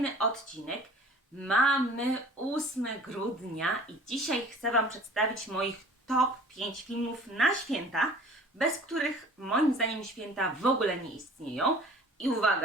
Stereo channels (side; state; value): both; normal; correlation 0.47